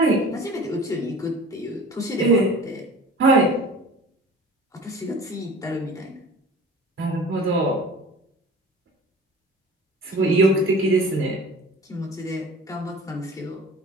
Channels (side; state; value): both; normal; correlation 0.41